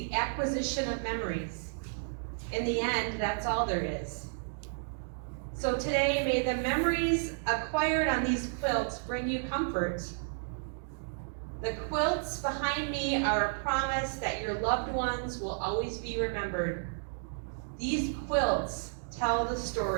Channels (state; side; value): silent; left; digital silence